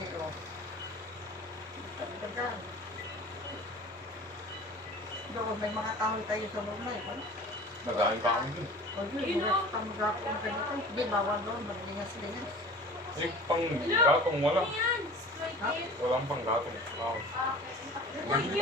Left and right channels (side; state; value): both; normal; correlation 0.41